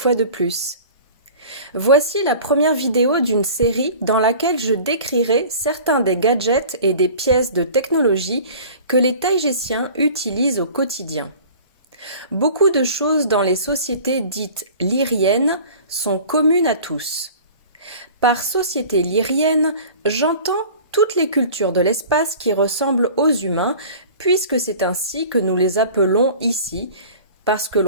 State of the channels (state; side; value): inverted; both; correlation -0.43